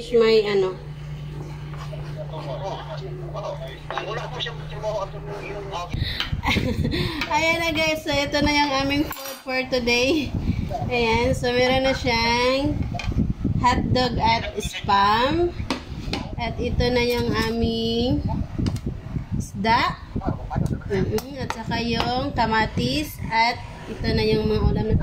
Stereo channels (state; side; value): identical; both; correlation 1.00